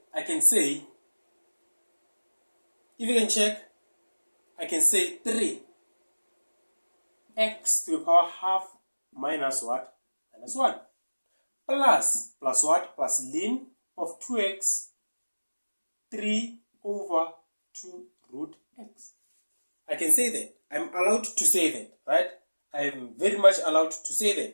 I can say, I can say 3x to the power half minus what? Minus 1. Plus what? Plus ln of 2x, 3 over 2 root x. I can say that. I'm allowed to say that, right? I am very much allowed to say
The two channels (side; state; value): both; inverted; correlation -1.00